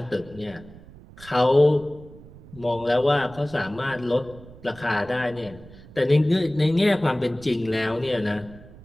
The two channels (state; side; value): noise; right; rumble, 20 dB below the sound